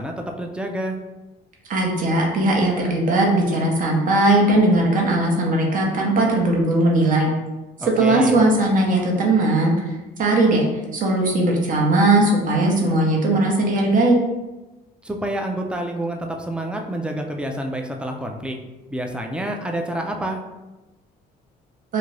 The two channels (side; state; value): both; normal; correlation 0.45